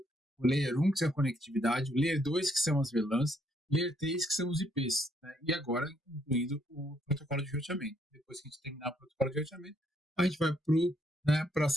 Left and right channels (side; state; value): both; normal; correlation 0.71